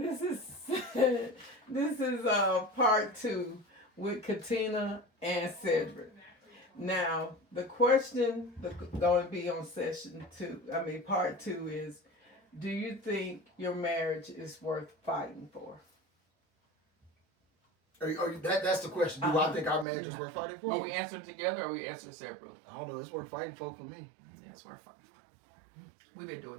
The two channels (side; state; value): left; drops out; at 19.9 s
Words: is this is part 2 with Katina and Cedric. Now the question going to be on session 2. I mean part 2 is: do you think your marriage is worth fighting for? That's the question. Do I think our marriage is worth fighting for? Are we answering together or are we answering separately? I don't know. It's worth fighting for me. Yeah, it's worth fighting for. We've been doing